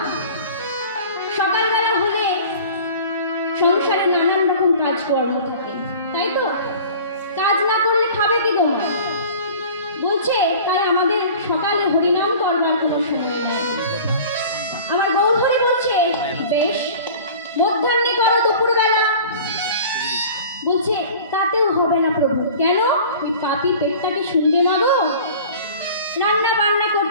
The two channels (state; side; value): inverted; both; correlation -0.42